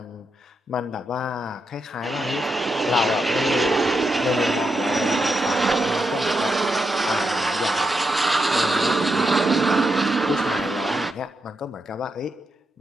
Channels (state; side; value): normal; both; correlation 0.84